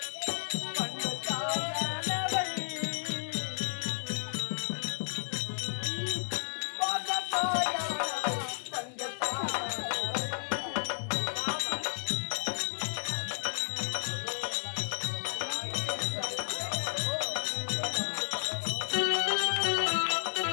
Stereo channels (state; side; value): silent; right; 56 dB below the other